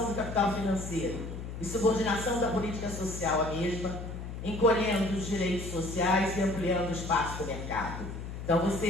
do capital financeiro e subordinação da política social à mesma, encolhendo os direitos sociais e ampliando o espaço do mercado. Então,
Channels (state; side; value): noise; left; hum, 8 dB below the sound